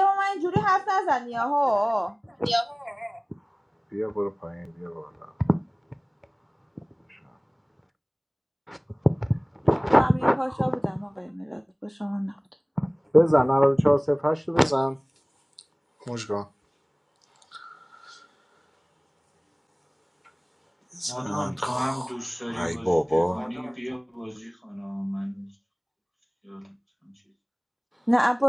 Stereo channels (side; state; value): both; identical; correlation 1.00